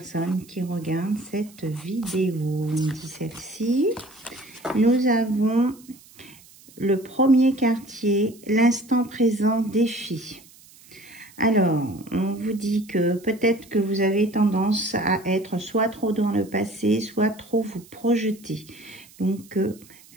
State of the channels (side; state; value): right; noise; hiss, 24 dB below the sound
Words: qui regardent cette vidéo? On dit celle-ci. Nous avons le premier quartier, l'instant présent défi. Alors, on vous dit que peut-être que vous avez tendance à être soit trop dans le passé, soit trop vous projeter. Donc,